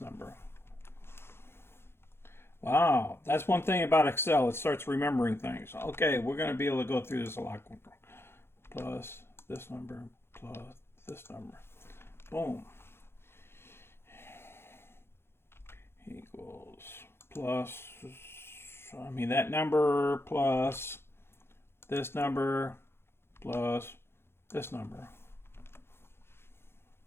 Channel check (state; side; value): late; right; 0.12 ms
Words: number. Wow, that's one thing about Excel. It starts remembering things. Okay, we're going to be able to go through this a lot quicker. Plus this number plus this number. Boom. Equals plus, that number plus this number plus this number